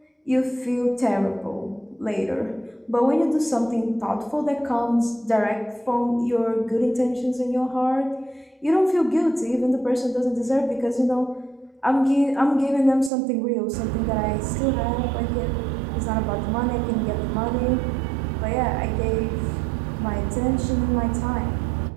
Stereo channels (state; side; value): drops out; left; at 13.1 s